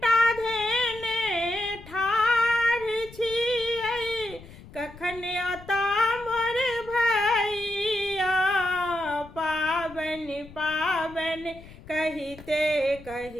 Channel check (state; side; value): noise; left; rumble, 19 dB below the sound